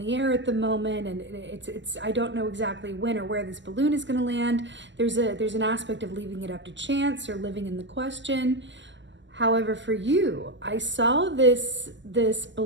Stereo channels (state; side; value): late; left; 0.54 ms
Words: air at the moment, and it's I don't know exactly when or where this balloon is going to land. There's an aspect of leaving it up to chance or living in the question. However, for you, I saw this